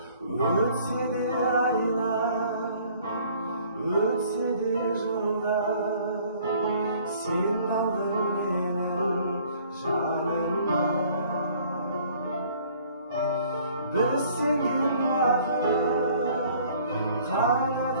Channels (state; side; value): inverted; both; correlation -0.56